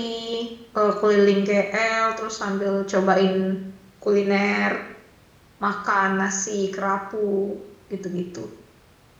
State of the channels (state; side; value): identical; both; correlation 1.00